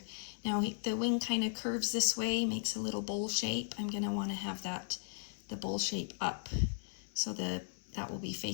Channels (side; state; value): right; silent; digital silence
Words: Now the wing kind of curves this way, makes a little bowl shape. I'm going to want to have the bowl shape up, so that will be